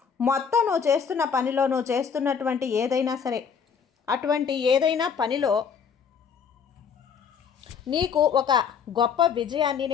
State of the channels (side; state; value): right; quieter; 6.7 dB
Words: మొత్తం నువ్వు చేస్తున్న పనిలో, నువ్వు చేస్తున్నటువంటి ఏదైనా సరే, అటువంటి ఏదైనా పనిలో నీకు ఒక గొప్ప విజయాన్ని